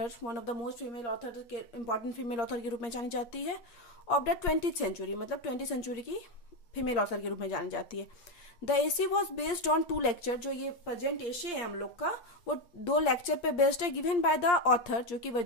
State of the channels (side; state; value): right; late; 8.5 ms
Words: one of the most female author के इंपॉर्टेंट फीमेल ऑथर के रूप में जानी जाती है ऑफ द 20th सेंचुरी, मतलब 20th सेंचुरी की फीमेल ऑथर के रूप में जानी जाती है। The essay was based on 2 lecture, जो ये प्रेजेंट एसे है हम लोग का, वो 2 लेक्चर पे बेस्ड है, गिवन बाय द ऑथर, जो कि